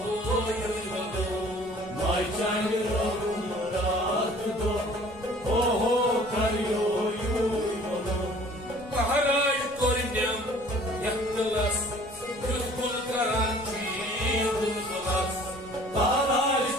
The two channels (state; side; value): noise; left; rumble, 22 dB below the sound